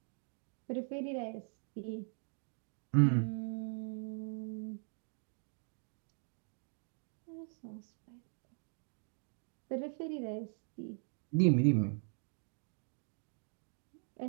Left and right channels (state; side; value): silent; left; 51 dB below the other